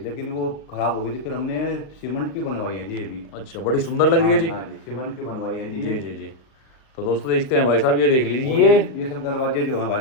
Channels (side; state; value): right; late; 39 ms